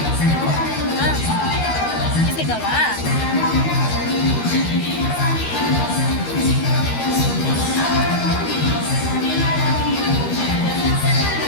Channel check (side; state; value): right; late; 13 ms